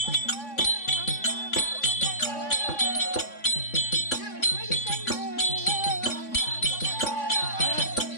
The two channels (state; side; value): late; right; 3.5 ms